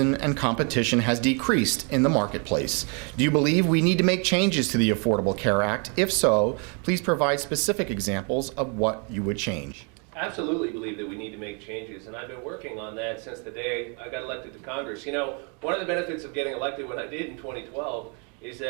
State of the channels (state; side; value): quieter; left; 35.9 dB